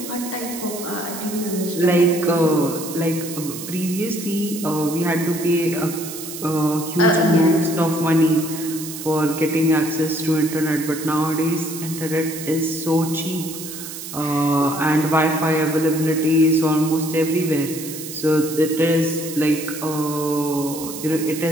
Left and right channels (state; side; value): noise; right; hiss, 10 dB below the sound